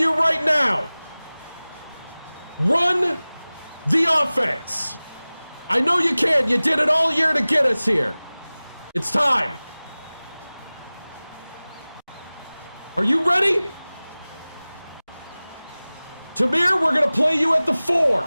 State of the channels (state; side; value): inverted; both; correlation -0.99